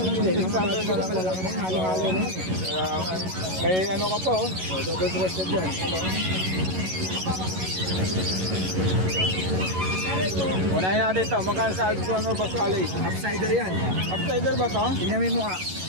lang din. 600 na lang. Malalaki na, halo-halo na. May ano ka po, oh. O, double breasted yan. Unahin natin ito. Magkano sa Alexander Boss Ali? Upsider yan. Upsider ba to? Tingnan mo yung mukha.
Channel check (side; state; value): left; late; 11 ms